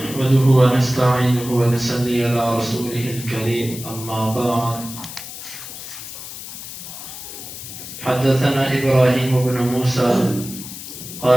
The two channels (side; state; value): left; noise; hiss, 11 dB below the sound